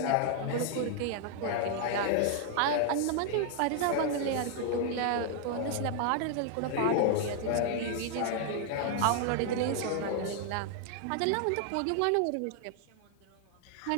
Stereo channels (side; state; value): both; different; correlation 0.00